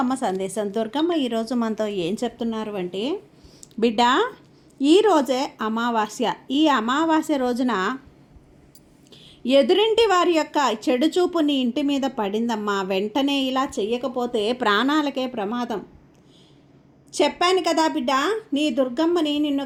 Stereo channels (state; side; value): identical; both; correlation 1.00